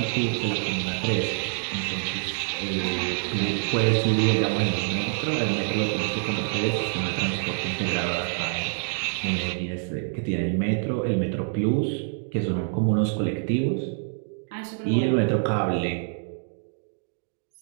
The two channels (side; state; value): left; silent; digital silence